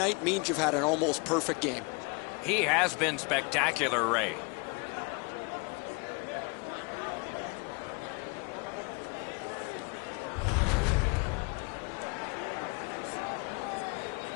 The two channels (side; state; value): right; quieter; 30.7 dB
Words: means you've had an almost perfect game. He has been spectacular, Ray.